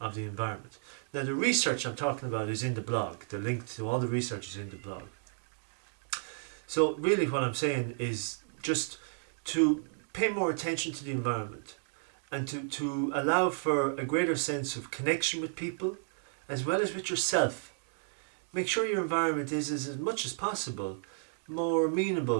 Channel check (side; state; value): left; silent; digital silence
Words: the environment. Now, the research I'm talking about is in the blog. The link to all the research is in the blog. So really what I'm saying is just to pay more attention to the environment and to allow for a greater sense of connection with people as well as with yourself. Make sure your environment is, as much as possible, more